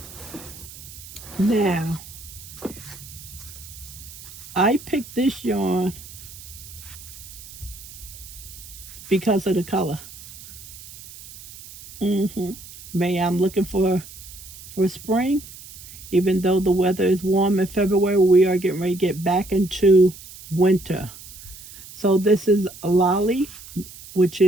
Now, I picked this yarn because of the color. May I'm looking for spring. Even though the weather is warm in February, we are getting ready to get back into winter. So this is a lolly, which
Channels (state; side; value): noise; right; hiss, 16 dB below the sound